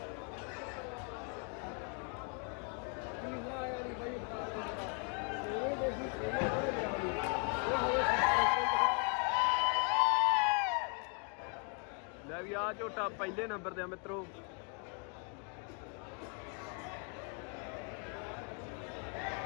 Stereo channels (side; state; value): right; quieter; 39.4 dB